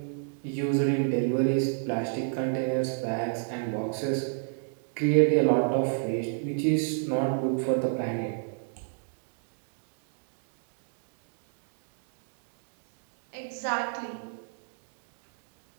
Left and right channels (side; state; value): left; silent; digital silence